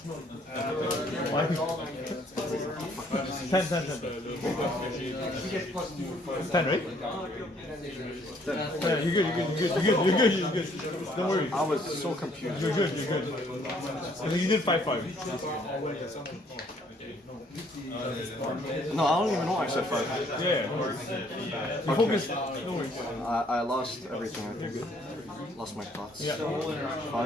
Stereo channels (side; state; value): both; normal; correlation 0.64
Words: Ten, right? Yeah, you're good. Don't worry. I was so confused. You're good. And then you did 5-5. No, I don't even know I said 5. Yeah. You focus. No worries. I lost everything, I think. Lost my thoughts. Yeah.